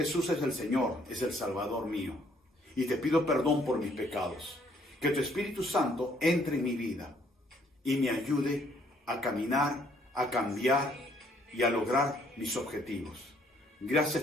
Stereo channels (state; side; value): normal; both; correlation 0.65